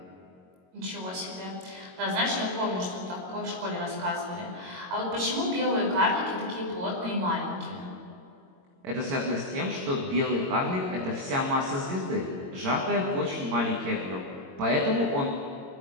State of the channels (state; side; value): late; left; 22 ms